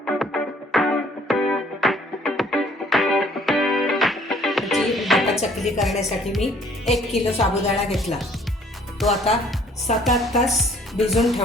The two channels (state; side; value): normal; both; correlation 0.58